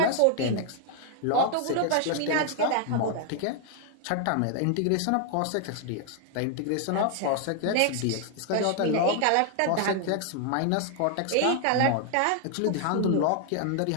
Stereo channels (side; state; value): both; different; correlation 0.00